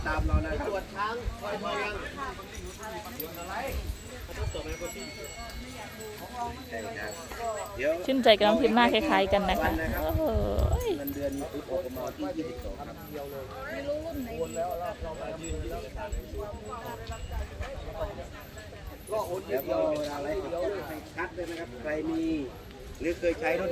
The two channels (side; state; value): both; identical; correlation 1.00